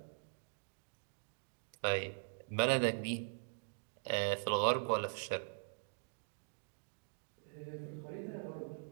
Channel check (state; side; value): silent; left; digital silence